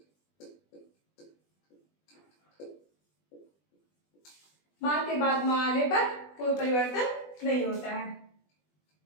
माँ के बाद माँ आने पर कोई परिवर्तन नहीं होता है।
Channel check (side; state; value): right; late; 20 ms